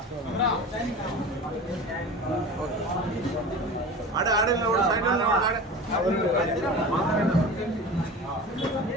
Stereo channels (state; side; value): normal; both; correlation 0.34